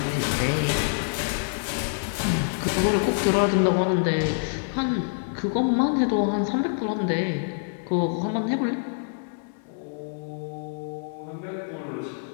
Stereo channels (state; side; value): silent; right; 61 dB below the other